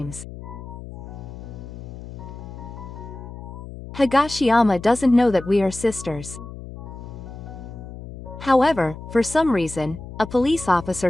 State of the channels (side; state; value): left; noise; hum, 12 dB below the sound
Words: Higashiyama doesn't know that we are sisters. However, for some reason, a police